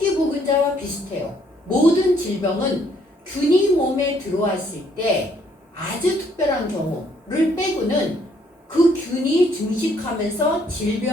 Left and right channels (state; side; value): normal; both; correlation 0.67